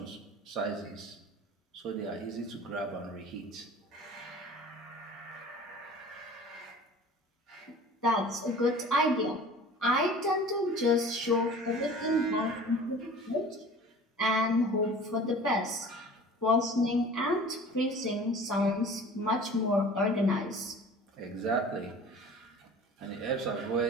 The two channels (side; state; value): both; normal; correlation 0.43